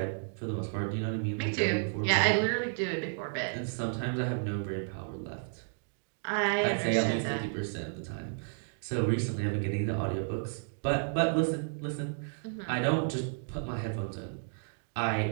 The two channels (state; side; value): silent; left; digital silence